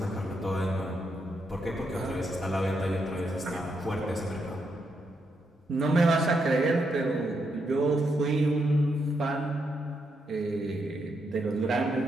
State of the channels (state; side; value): normal; both; correlation 0.80